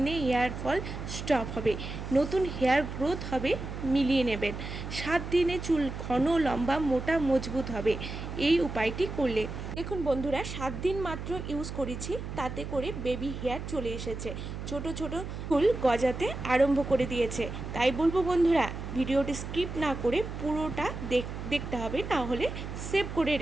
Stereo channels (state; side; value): noise; right; hum, 7 dB below the sound